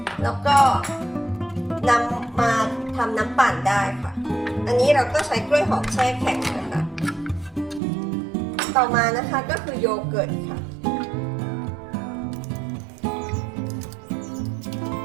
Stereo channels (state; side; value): drops out; left; at 7.8 s